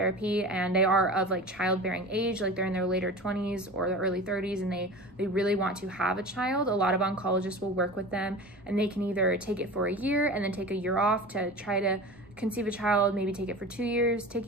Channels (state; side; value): normal; both; correlation 0.34